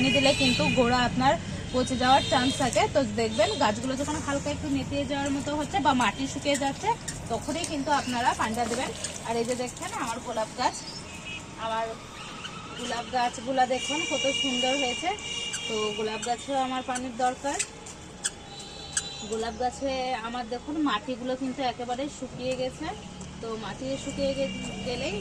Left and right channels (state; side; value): identical; both; correlation 1.00